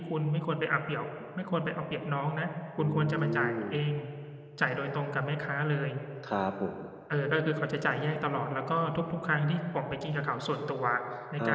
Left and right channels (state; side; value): identical; both; correlation 1.00